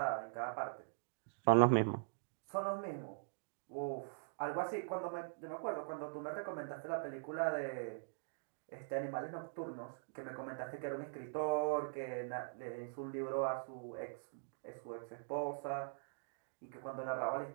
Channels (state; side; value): silent; left; digital silence